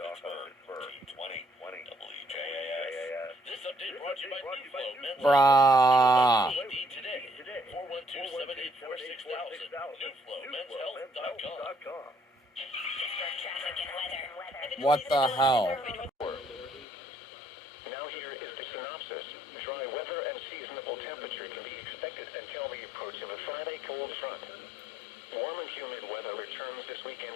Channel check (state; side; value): drops out; right; at 16.9 s